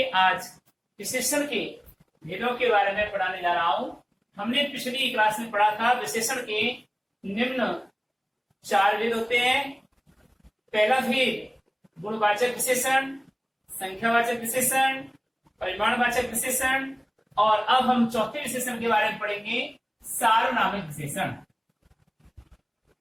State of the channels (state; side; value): identical; both; correlation 1.00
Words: आज विशेषण के भेदों के बारे में पढ़ाने जा रहा हूं। हमने पिछली क्लास में पढ़ा था विशेषण के निम्न 4 भेद होते हैं। पहला भेद गुणवाचक विशेषण, संख्यावाचक विशेषण, परिमाणवाचक विशेषण, और अब हम चौथे विशेषण के बारे में पढ़ेंगे, सार्वनामिक विशेषण।